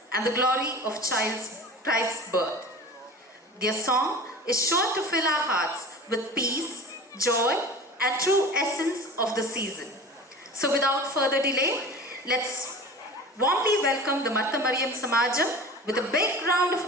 and the glory of Christ's birth. Their song is sure to fill our hearts with peace, joy, and true essence of the season. So without further delay, let's warmly welcome the Martha Mariam Samajam with a big round of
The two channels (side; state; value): both; normal; correlation 0.37